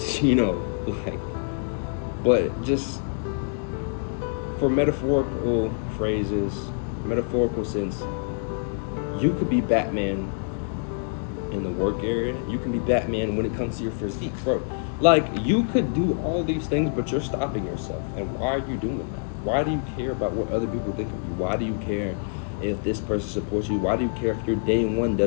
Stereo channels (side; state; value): right; silent; digital silence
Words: you know, like, but just for metaphorical phrases, metaphorical sense, you could be Batman in the work area. You can be Batman when it comes to your physique, bro. Like, you could do all these things, but you're stopping yourself. And why are you doing that? Why do you care about what other people think of you? Why do you care if this person supports you? Why do you care if your day one